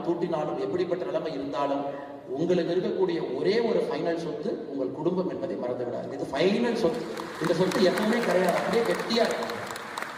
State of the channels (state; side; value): identical; both; correlation 1.00